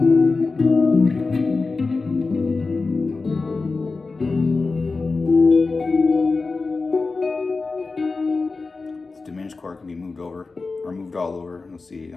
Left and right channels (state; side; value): quieter; right; 4.0 dB